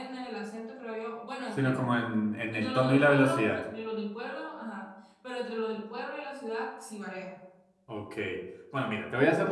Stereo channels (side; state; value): both; identical; correlation 1.00